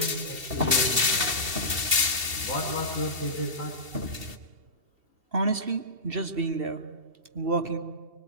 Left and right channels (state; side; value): late; left; 2.7 ms